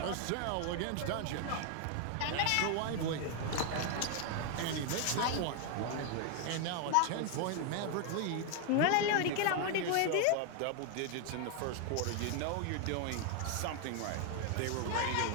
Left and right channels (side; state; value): both; different; correlation 0.01